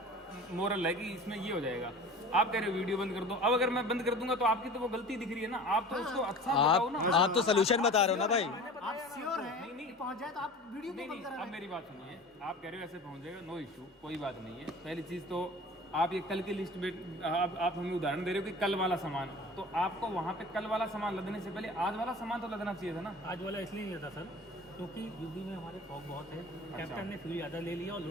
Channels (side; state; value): both; normal; correlation 0.39